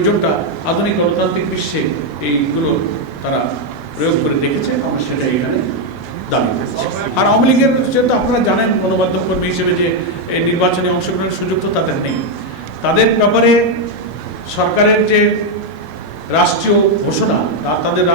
আধুনিক গণতান্ত্রিক বিশ্বে এইগুলো তারা প্রয়োগ করে দেখেছে। আমরা সেটা এখানে দাবি করছি। আর আওয়ামী লীগের যেহেতু আপনারা জানেন গণমাধ্যম কর্মী হিসেবে যে এই নির্বাচনে অংশগ্রহণের সুযোগ তো তাদের নেই। তাদের ব্যাপারে সরকারের যে রাষ্ট্রীয় ঘোষণা তাদের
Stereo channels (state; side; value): normal; both; correlation 0.02